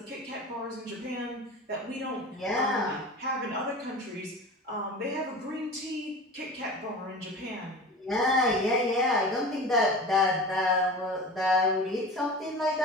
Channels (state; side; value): normal; both; correlation 0.34